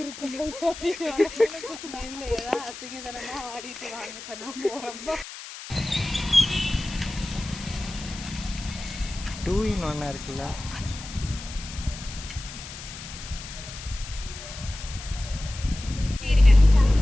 டூ இன் ஒன்னா இருக்குல்ல.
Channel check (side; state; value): left; noise; hiss, 12 dB below the sound